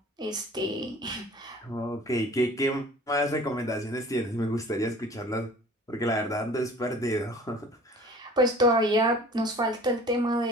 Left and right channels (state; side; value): normal; both; correlation 0.47